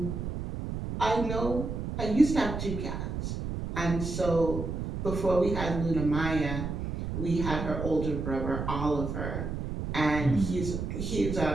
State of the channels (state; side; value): noise; right; rumble, 4 dB below the sound